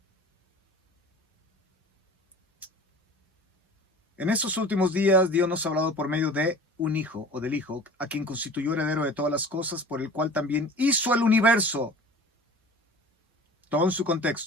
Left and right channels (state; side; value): normal; both; correlation 0.41